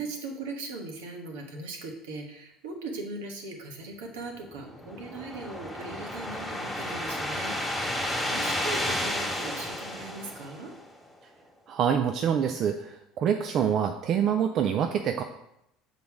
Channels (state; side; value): quieter; left; 4.4 dB